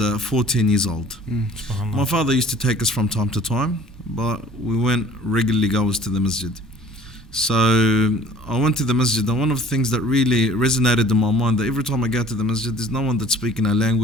14 years old. My father used to take us from time to time, but we went regularly goers to the masjid. So I went to the masjid, and one of the things that really resonated in my mind, that every time I go to the masjid, there's no one that's speaking our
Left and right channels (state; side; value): normal; both; correlation 0.50